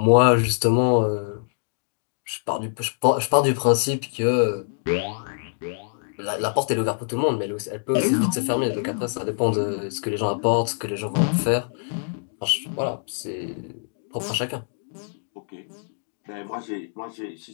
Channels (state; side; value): silent; right; digital silence